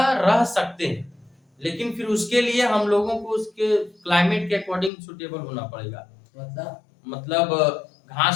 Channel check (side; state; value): right; drops out; at 4.9 s